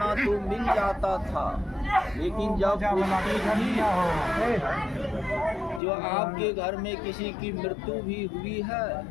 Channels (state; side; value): drops out; right; at 5.8 s